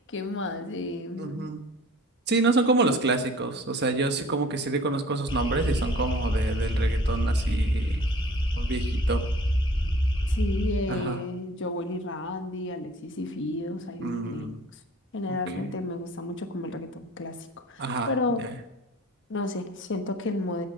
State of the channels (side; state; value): both; normal; correlation 0.47